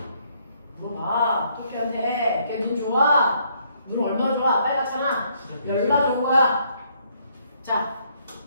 물어봐. 토끼한테 걔 눈 좋아? 눈 얼마나 좋아? 빨갛잖아. 열나는 거야. 자,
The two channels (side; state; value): both; inverted; correlation -0.70